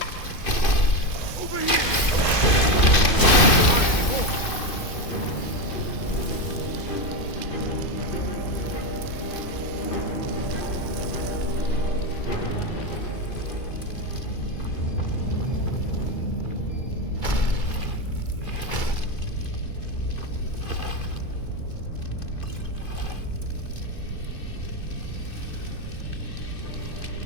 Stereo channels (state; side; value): late; right; 2.5 ms